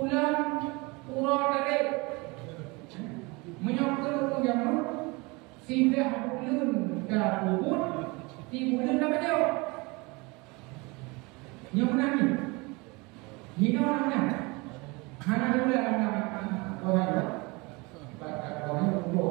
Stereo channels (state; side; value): quieter; left; 26.3 dB